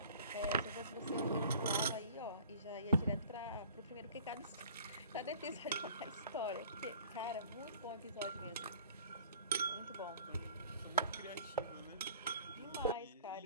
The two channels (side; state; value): both; inverted; correlation -0.49